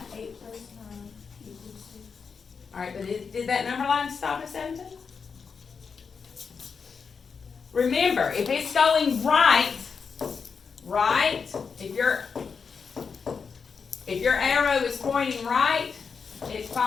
Alright, but did that number line stop at 17? Remember, if it's going right, if your arrow is pointing right, it's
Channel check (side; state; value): right; quieter; 5.7 dB